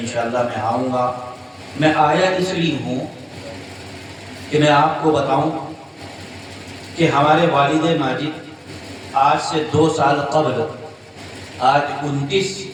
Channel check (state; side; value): identical; both; correlation 1.00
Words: میں آؤں گا۔ میں آیا اس لیے ہوں کہ میں آپ کو بتاؤں کہ ہمارے والد ماجد آج سے 2 سال قبل، آج 29